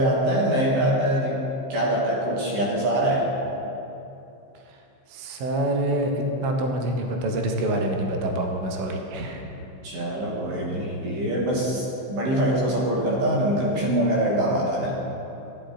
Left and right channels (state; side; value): late; left; 15 ms